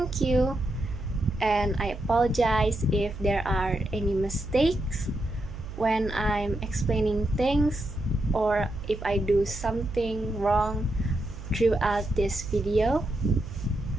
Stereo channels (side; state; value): right; noise; hum, 12 dB below the sound